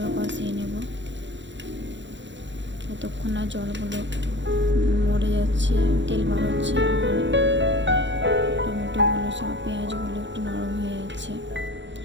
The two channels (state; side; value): late; left; 0.53 ms